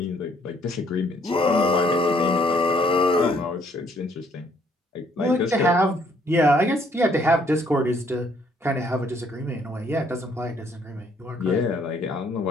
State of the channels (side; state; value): both; normal; correlation 0.65